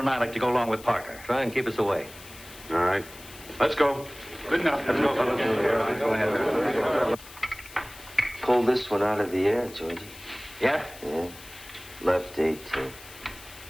I like to go along with Parker. Try and keep us away. All right. Let's go. Good enough. Let's go, fellas. Go ahead. Pull this one out of the air, Georgie. Yeah? Yeah. Left 18.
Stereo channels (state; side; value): noise; left; hiss, 18 dB below the sound